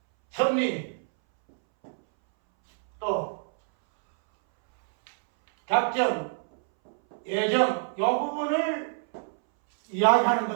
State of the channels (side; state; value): left; silent; 61 dB below the other